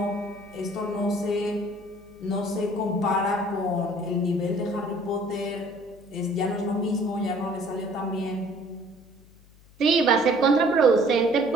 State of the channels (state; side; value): noise; left; hum, 26 dB below the sound